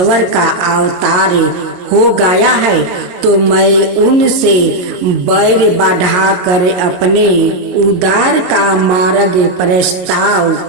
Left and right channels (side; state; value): left; late; 22 ms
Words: का अवतार हो गया है तो मैं उनसे बैर बढ़ाकर अपने उद्धार का मार्ग प्रस्ताव